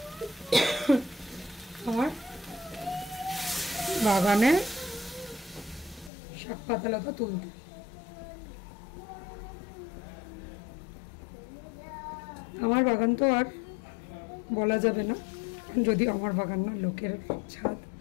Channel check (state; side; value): drops out; right; at 6.1 s